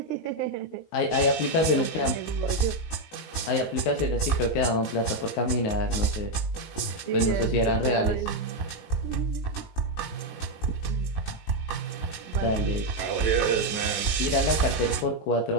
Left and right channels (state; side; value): late; right; 18 ms